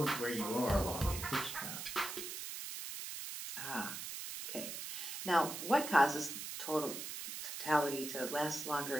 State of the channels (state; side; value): noise; right; hiss, 7 dB below the sound